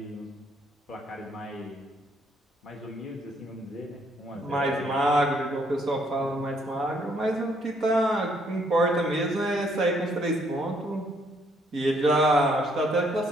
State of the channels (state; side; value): normal; both; correlation 0.69